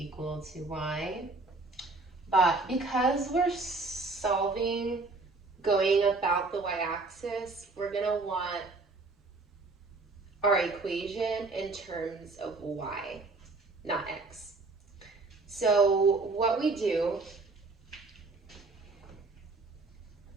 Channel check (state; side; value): quieter; left; 3.5 dB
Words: to Y. But because we're solving going about the y-axis, we're gonna want our equation in terms of y, not x. So what we do,